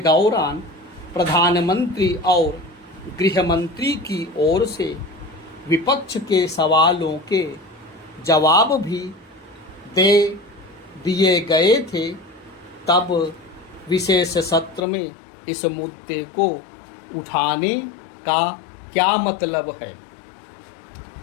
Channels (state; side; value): drops out; right; at 14.9 s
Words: प्रधानमंत्री और गृह मंत्री की ओर से विपक्ष के सवालों के जवाब भी दे दिए गए थे। तब विशेष सत्र में इस मुद्दे को उठाने का क्या मतलब है?